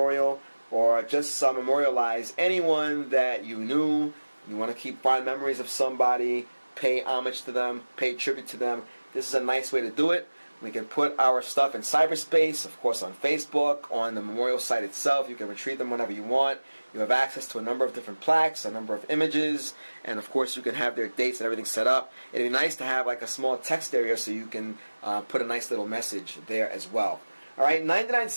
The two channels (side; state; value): both; inverted; correlation -1.00